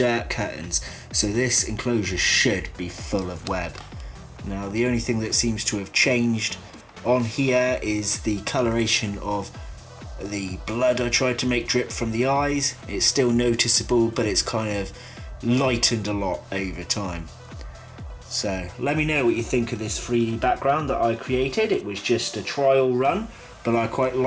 curtains, so this enclosure should be full of web. Now the only thing that seems to have changed on here is the coloration of the blood I tried to make drip from the eyes. It's still noticeable, but it's kind of lightened a lot over time. So let me know what you think of this 3D background that I created. It was just a trial run, but I quite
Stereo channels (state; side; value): identical; both; correlation 1.00